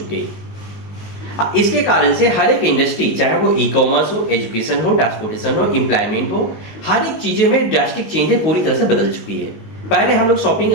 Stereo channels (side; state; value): right; late; 19 ms